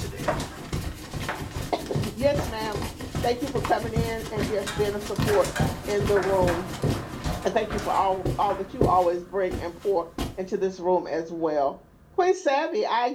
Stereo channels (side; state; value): both; identical; correlation 1.00